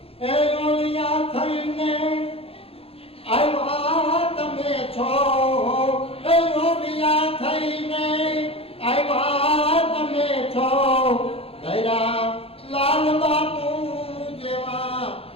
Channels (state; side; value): late; right; 0.28 ms